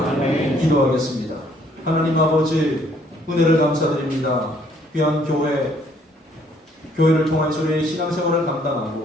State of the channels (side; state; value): both; normal; correlation 0.64